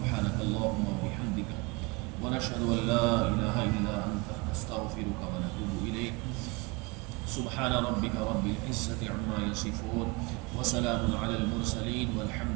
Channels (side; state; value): left; quieter; 26.5 dB